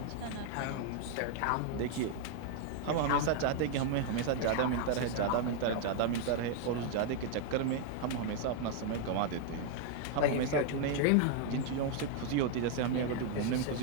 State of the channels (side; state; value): both; different; correlation 0.00